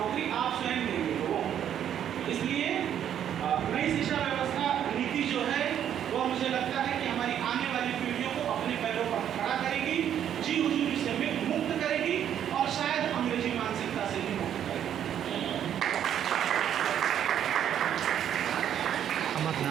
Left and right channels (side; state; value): left; quieter; 9.8 dB